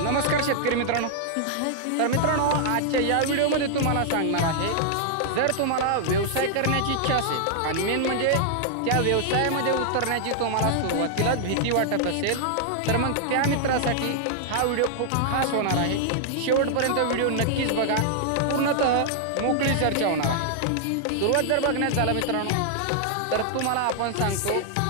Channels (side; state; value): both; different; correlation -0.01